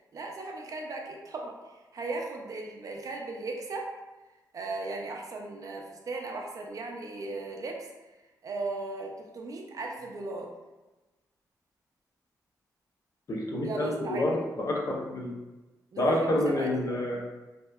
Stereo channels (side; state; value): both; normal; correlation 0.70